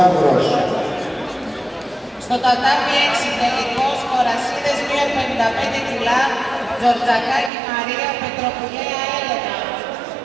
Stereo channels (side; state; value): left; drops out; at 7.5 s